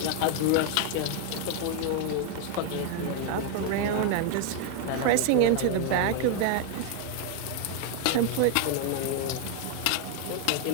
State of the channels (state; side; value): different; both; correlation 0.00